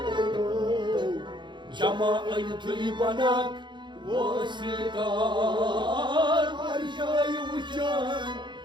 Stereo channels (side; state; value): left; late; 0.23 ms